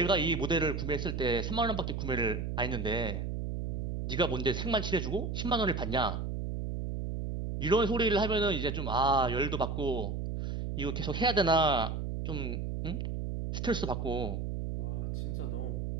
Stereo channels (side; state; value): right; noise; hum, 3 dB below the sound